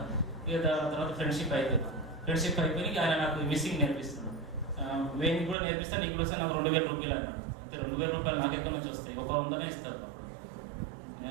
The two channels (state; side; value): drops out; left; at 5.6 s